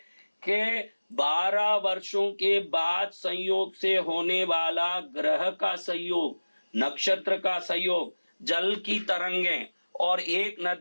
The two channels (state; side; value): inverted; both; correlation -1.00